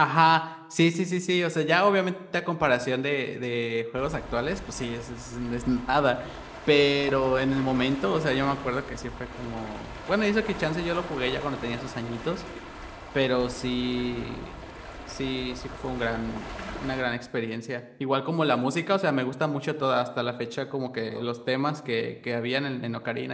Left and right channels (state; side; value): identical; both; correlation 1.00